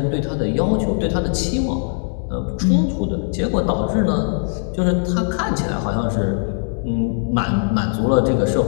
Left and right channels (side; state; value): right; silent; digital silence